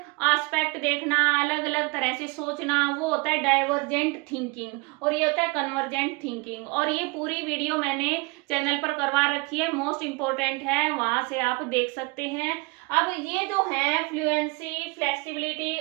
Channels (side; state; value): left; quieter; 27.9 dB